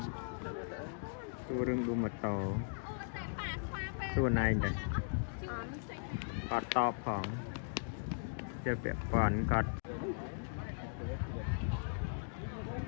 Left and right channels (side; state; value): right; silent; digital silence